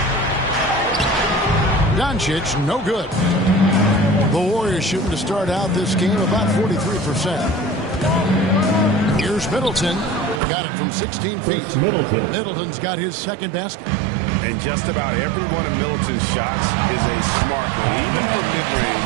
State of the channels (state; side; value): drops out; left; at 10.4 s